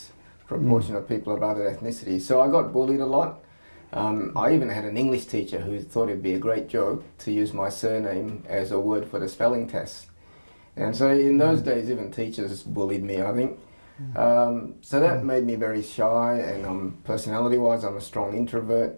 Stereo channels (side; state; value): both; inverted; correlation -1.00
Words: proportion of people of other ethnicity. So I got bullied a lot. I even had an English teacher who thought it'd be a great joke to use my surname as a word for the spelling test. And so in those days, even teachers bullied me, I think. So that made me very shy, and personality-wise, I'm a strong